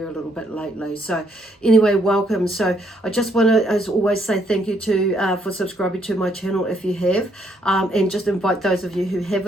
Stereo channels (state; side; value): normal; both; correlation 0.71